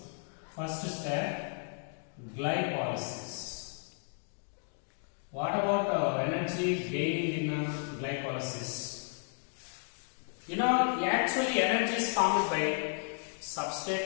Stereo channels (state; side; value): silent; right; 56 dB below the other